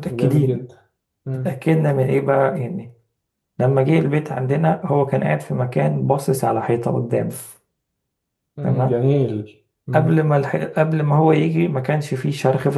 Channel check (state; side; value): identical; both; correlation 1.00